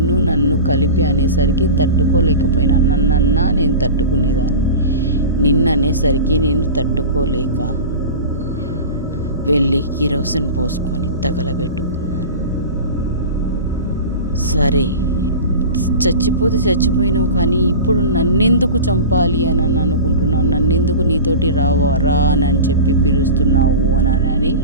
నన్ను కలిపి అనేసరికి తట్టుకోలేకపోయినా. నన్నన్నా నేను తట్టుకునేదాన్ని. నిన్ననేసరికి నేను తట్టుకోలేక వెళ్ళి కిరోసిన్ పోసుకొని తగలబెట్టుకున్నాను. సరే చచ్చిపోతే చచ్చిపోయినావు, కానీ ఇప్పుడు నన్నెందుకు చంపాలి అని అనుకుంటున్నావు? నన్నెందుకు నీతోటి రా అని చెప్పి పిలుస్తున్నావు అని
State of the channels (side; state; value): both; inverted; correlation -0.32